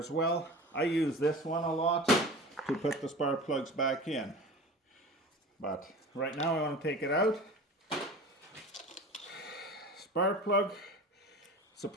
well. I use this one a lot to put the spark plugs back in. But right now I want to take it out. Spark plug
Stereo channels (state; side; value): normal; both; correlation 0.36